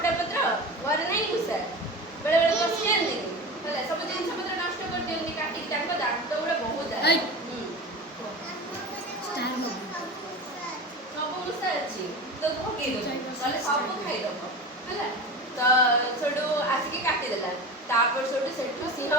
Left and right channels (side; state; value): both; normal; correlation 0.30